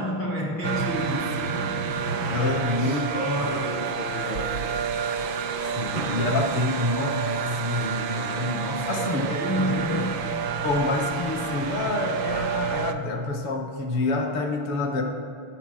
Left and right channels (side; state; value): right; late; 6.0 ms